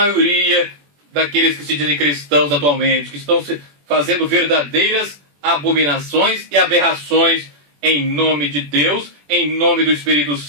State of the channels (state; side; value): late; left; 21 ms